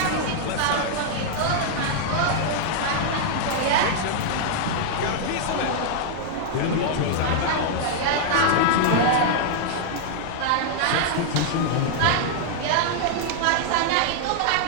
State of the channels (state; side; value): different; both; correlation -0.01